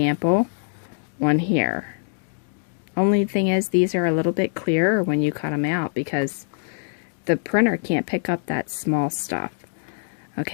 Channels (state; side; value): silent; right; digital silence